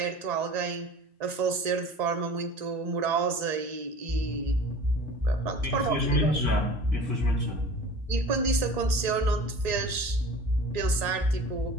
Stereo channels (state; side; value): late; left; 1.9 ms